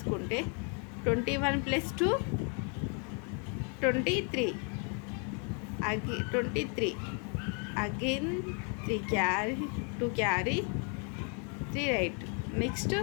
21 + 2 23 23 అగైన్ 3 క్యారీ 2 క్యారీ 3 రైట్. నెక్స్ట్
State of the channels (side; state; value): right; quieter; 38.5 dB